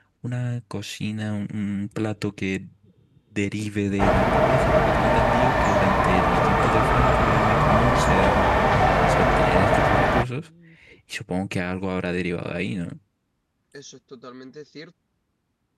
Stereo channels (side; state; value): both; identical; correlation 1.00